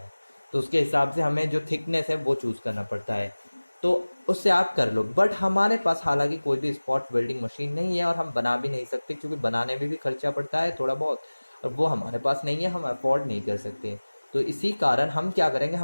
तो उसके हिसाब से हमें जो थिकनेस है वो चूज़ करना पड़ता है, तो उससे आप कर लो। बट हमारे पास हालांकि कोई भी स्पॉट वेल्डिंग मशीन नहीं है और हम बना भी नहीं सकते, क्योंकि बनाने में भी खर्चा पड़ता है थोड़ा बहुत, और वो हमारे पास नहीं है, हम अफोर्ड नहीं कर सकते। तो इसी कारण हम क्या करेंगे,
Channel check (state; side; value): inverted; both; correlation -1.00